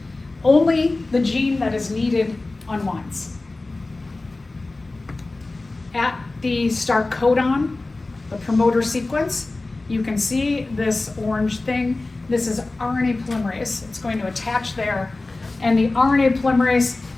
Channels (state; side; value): quieter; right; 3.2 dB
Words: Only the gene that is needed unwinds. At the start codon, the promoter sequence, you can see this orange thing. This is RNA polymerase. It's going to attach there. And the RNA polymerase,